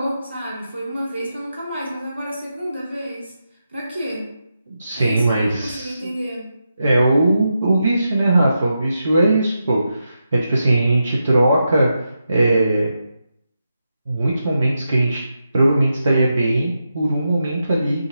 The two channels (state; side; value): inverted; both; correlation -0.87